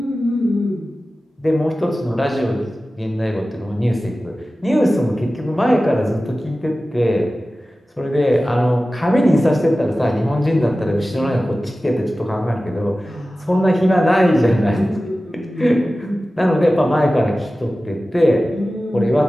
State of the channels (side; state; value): both; normal; correlation 0.95